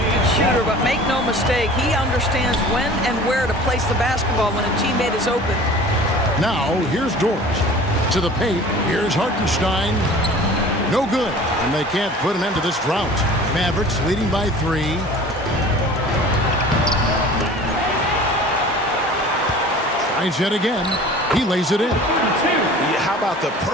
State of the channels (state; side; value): normal; both; correlation 0.43